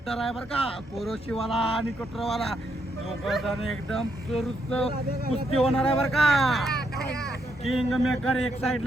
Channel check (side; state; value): both; normal; correlation 0.77